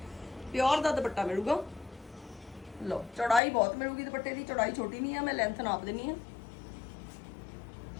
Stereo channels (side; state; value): right; drops out; at 3.4 s